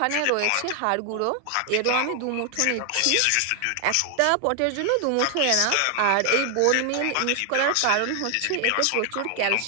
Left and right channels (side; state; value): both; different; correlation 0.00